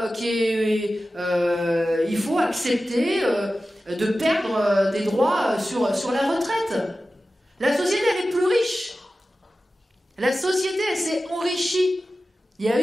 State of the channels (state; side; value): normal; both; correlation 0.94